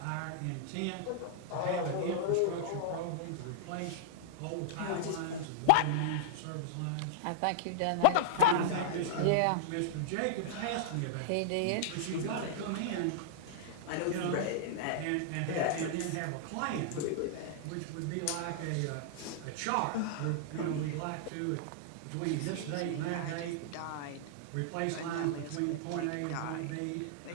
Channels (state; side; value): different; both; correlation -0.01